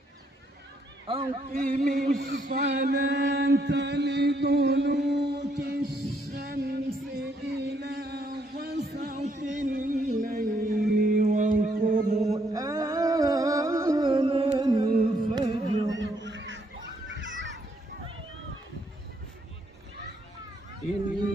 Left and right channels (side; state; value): both; normal; correlation 0.72